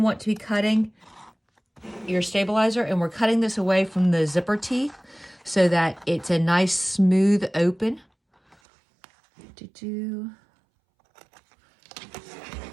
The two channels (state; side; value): drops out; left; at 8.6 s